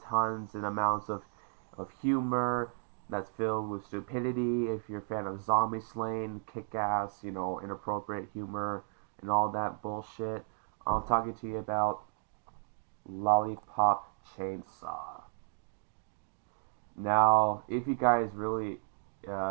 amounts of humor that's filled with stupidity, if you're a fan of zombie slaying, kick-ass, inappropriate humor and all that bullshit, I'm talking to you about Lollipop Chainsaw. Now, if you guys really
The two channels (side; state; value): left; silent; digital silence